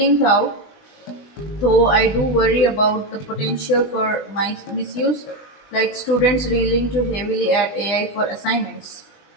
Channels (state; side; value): late; right; 20 ms